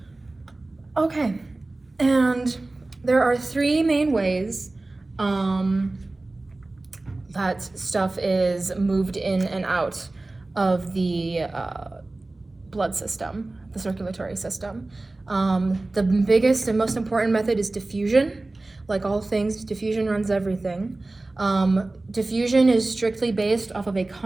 Okay, and there are 3 main ways that stuff is moved in and out of the blood system, the circulatory system. The biggest and most important method is diffusion. Like all things, diffusion runs everything. Diffusion is strictly based off of a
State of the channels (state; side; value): quieter; left; 3.0 dB